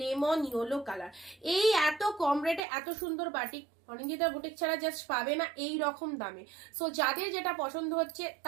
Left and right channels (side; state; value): left; drops out; at 2.6 s